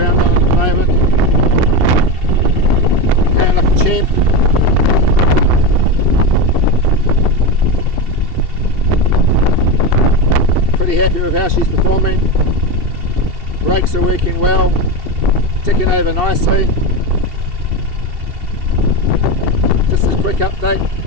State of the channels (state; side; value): late; left; 2.7 ms